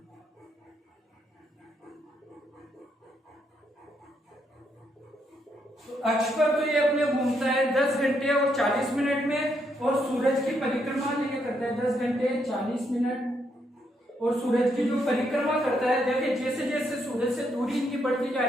तो अक्ष पर तो ये अपने घूमता है 10 घंटे और 40 मिनट में, और सूरज की परिक्रमा ये करता है 10 घंटे 40 मिनट, और सूरज की जो परिक्रमा करता है, देखिए जैसे जैसे सूरज से दूरी इनकी बढ़ती जा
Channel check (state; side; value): normal; both; correlation 0.76